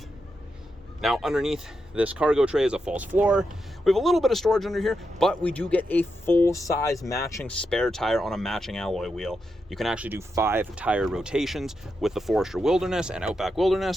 Now underneath this cargo tray is a false floor. We have a little bit of storage under here, but we do get a full-size matching spare tire on a matching alloy wheel. You can actually do 5 tire rotations with the Forester Wilderness and Outback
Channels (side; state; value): both; normal; correlation 0.86